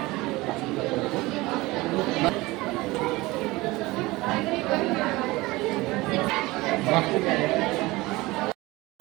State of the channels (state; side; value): quieter; left; 20.9 dB